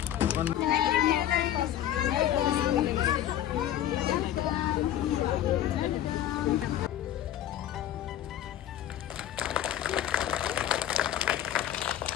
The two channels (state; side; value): quieter; right; 11.7 dB